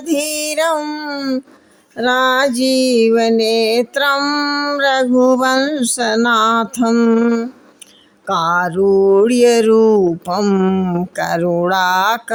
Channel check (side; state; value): both; identical; correlation 1.00